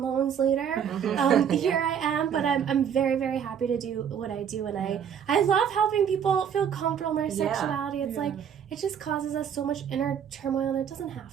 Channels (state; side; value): quieter; left; 8.2 dB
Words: loans later, here I am. But I'm very, very happy to do what I do. And I love helping people feel comfortable in their sexuality. It's like, it just causes us so much inner turmoil, and it doesn't